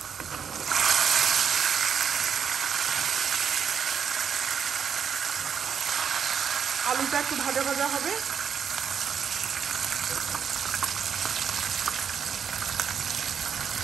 আলুটা একটু ভাজা ভাজা হবে।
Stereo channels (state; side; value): quieter; left; 7.3 dB